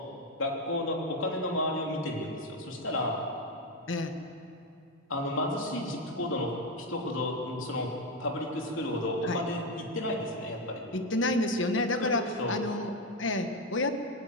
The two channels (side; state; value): both; normal; correlation 0.09